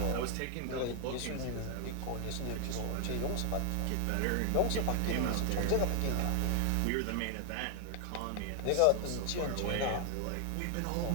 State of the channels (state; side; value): different; both; correlation 0.00